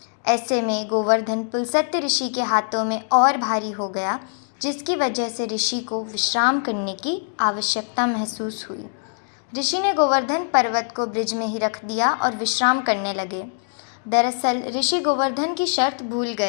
ऐसे में गोवर्धन पुलस्त्य ऋषि के हाथों में और भारी हो गया, जिसकी वजह से ऋषि को विश्राम करने की आवश्यकता महसूस हुई। ऋषि ने गोवर्धन पर्वत को ब्रिज में ही रख दिया और विश्राम करने लगे। दरअसल ऋषि गोवर्धन की शर्त भूल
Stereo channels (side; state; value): right; silent; digital silence